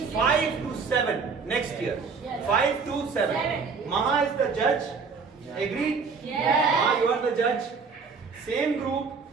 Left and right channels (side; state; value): left; quieter; 5.2 dB